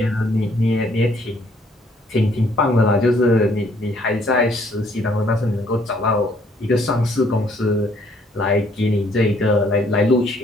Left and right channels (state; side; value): normal; both; correlation 0.65